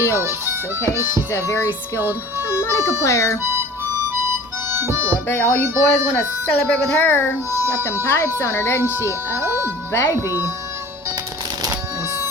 okay? She's a very skilled harmonica player. Ooh, I bet all you boys want to celebrate with her. She got them pipes on her, doesn't she? Oh, baby. And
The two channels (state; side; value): normal; both; correlation 0.43